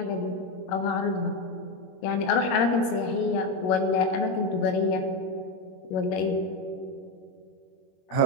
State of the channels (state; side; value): late; right; 21 ms